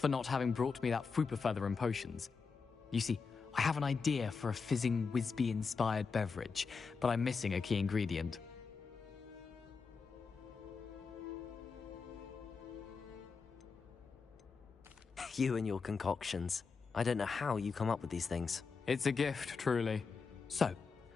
not having brought me that Fwooper feather and potions. You see, I have an idea for a fizzing Wisby-inspired beverage, but I'm missing a key ingredient. You and your concoctions. I don't know how you come up with these things. It's a gift, truly. So,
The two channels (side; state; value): right; quieter; 5.1 dB